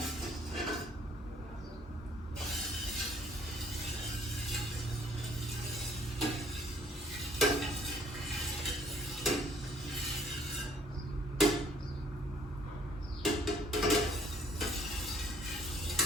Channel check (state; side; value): normal; both; correlation 0.61